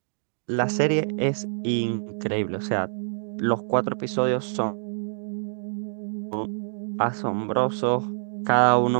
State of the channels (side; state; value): left; silent; digital silence